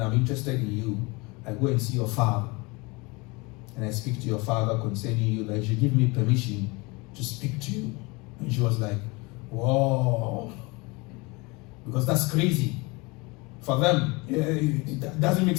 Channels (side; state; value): right; quieter; 26.2 dB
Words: I'm interested in you, I go and see your father. And I speak to your father concerning you, that you should give me permission to speak to you. And she was like, whoa. Because that's crazy. For them, it doesn't make